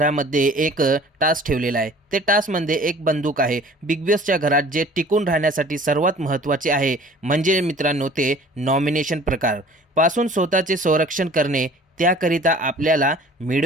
एक टास्क ठेवलेला आहे. ते टास्कमध्ये एक बंदूक आहे. बिग बॉसच्या घरात जे टिकून राहण्यासाठी सर्वात महत्त्वाचे आहे म्हणजे मित्रांनो ते नॉमिनेशन प्रकार पासून स्वतःचे संरक्षण करणे. त्याकरिता आपल्याला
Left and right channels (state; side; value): normal; both; correlation 0.49